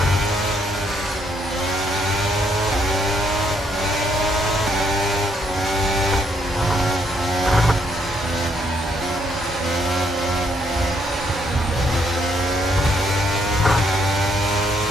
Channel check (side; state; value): both; normal; correlation 0.72